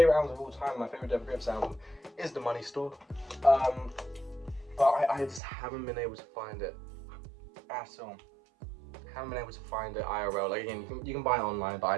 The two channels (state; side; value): drops out; left; at 5.4 s